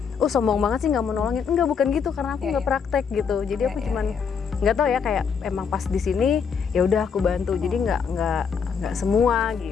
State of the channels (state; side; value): quieter; right; 6.4 dB